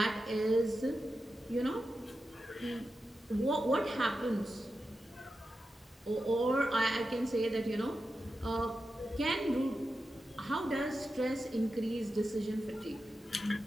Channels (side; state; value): both; normal; correlation 0.90